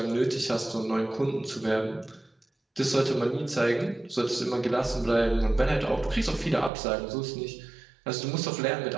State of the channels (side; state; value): left; drops out; at 6.7 s